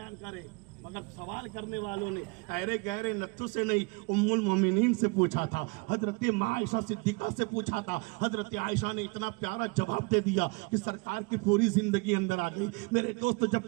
करे। मगर सवाल करने वालों ने अरे गहरे नत्थु से नहीं, उम्मुल मोमिनीन से पूछा था, हजरत माँ आयशा सिद्दीका से पूछा था। हजरत आयशा ने इतना प्यारा जवाब दे दिया कि सरकार की पूरी जिंदगी अंदर आ गई। मेरे दोस्त, जब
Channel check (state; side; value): quieter; left; 29.8 dB